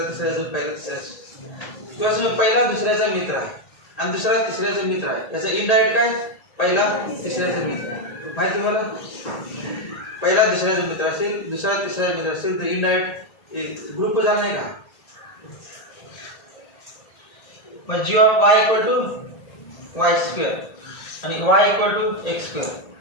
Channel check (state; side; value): late; right; 1.8 ms